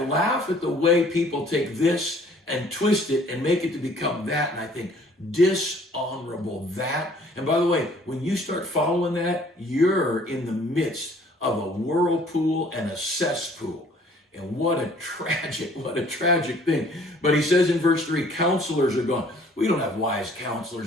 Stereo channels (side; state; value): both; normal; correlation 0.56